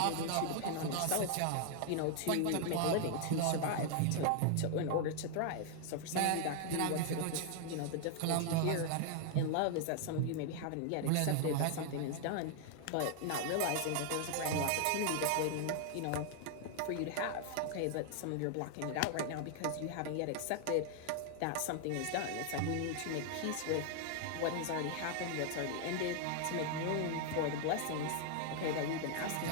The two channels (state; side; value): different; both; correlation 0.00